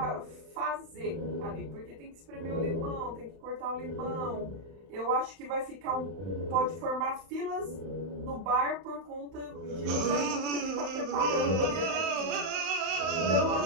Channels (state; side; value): late; left; 31 ms